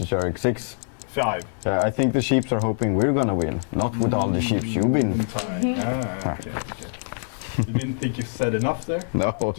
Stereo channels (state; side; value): silent; right; 62 dB below the other